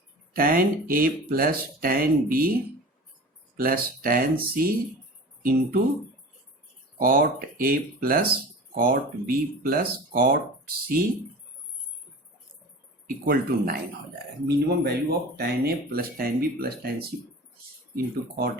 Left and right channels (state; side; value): normal; both; correlation 0.36